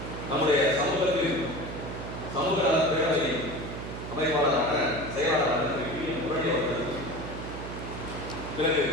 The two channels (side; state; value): right; noise; hum, 8 dB below the sound